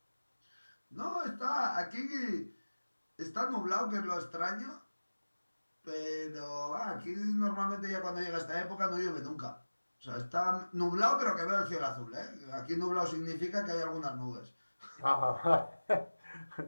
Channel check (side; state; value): both; inverted; correlation -1.00